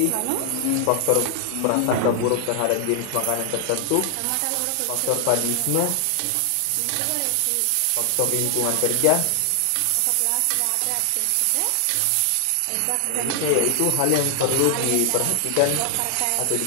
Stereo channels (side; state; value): both; different; correlation 0.00